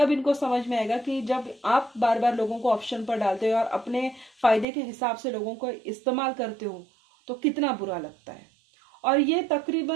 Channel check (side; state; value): left; drops out; at 4.7 s